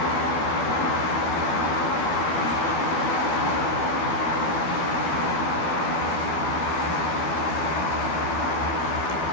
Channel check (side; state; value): right; late; 13 ms